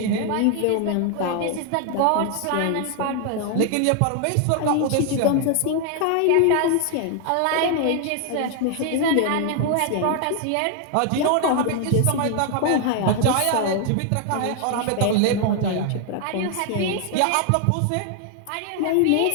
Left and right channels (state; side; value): different; both; correlation 0.00